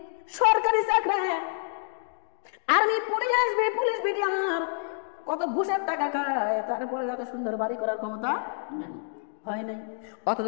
সরকারি চাকরি, আর্মি, পুলিশ বিডিআর কত ঘুষের টাকা খায়, তারপরে এত সুন্দর বাড়ি করার ক্ষমতা হয় নাই, অথচ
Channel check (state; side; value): silent; right; digital silence